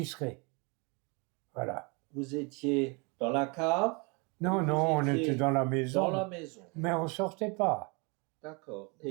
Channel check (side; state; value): left; quieter; 30.9 dB